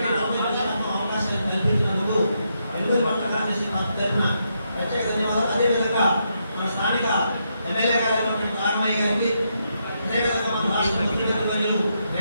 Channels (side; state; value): both; inverted; correlation -0.80